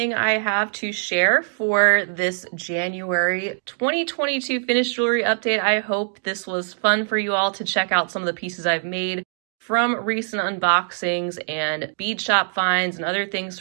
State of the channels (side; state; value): left; silent; digital silence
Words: I have to share for this January 2022 finished jewelry update. I hope this was fun for you all to check out some of the pieces I've made from recent unboxings and bead shop finds and other things